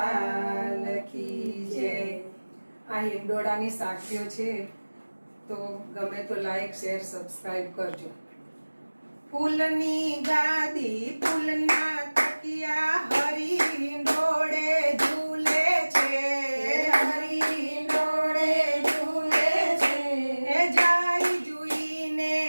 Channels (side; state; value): both; inverted; correlation -1.00